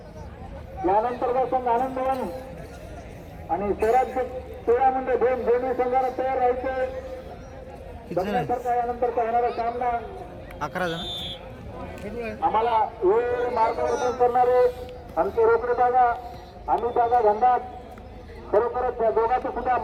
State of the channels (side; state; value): both; identical; correlation 1.00